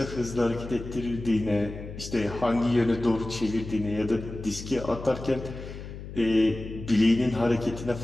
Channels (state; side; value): noise; left; hum, 11 dB below the sound